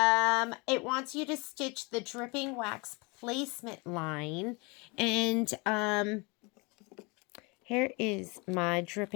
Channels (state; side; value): quieter; right; 28.7 dB